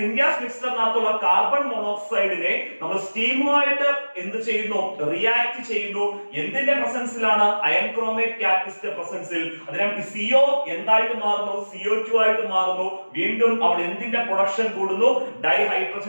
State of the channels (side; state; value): both; inverted; correlation -1.00